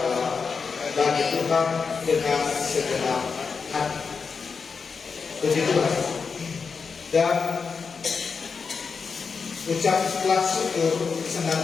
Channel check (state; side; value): quieter; right; 5.4 dB